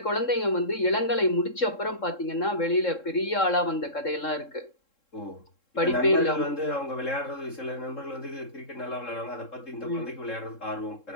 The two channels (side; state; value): right; late; 3.7 ms